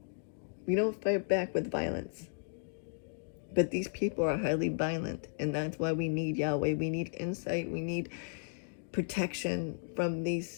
We don't fight back with violence. But these people are highly violent, and that's why we need Yahweh. We need insight. We need protection from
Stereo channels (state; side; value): silent; right; digital silence